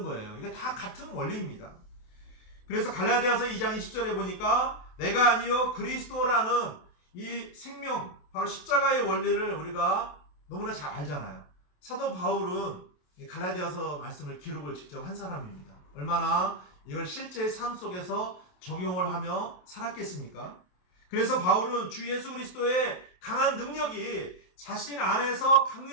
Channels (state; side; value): late; right; 27 ms